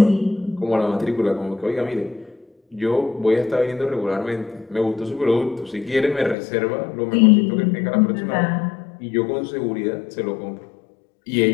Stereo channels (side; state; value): right; drops out; at 6.4 s